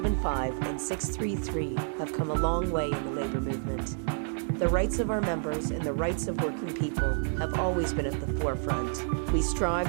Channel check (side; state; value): left; silent; digital silence